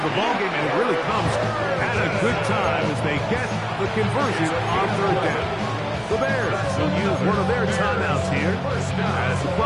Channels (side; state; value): both; identical; correlation 1.00